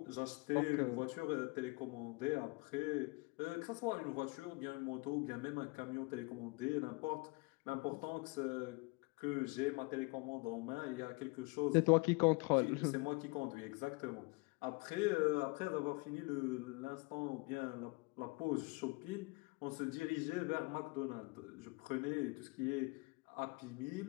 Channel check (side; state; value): right; quieter; 28.0 dB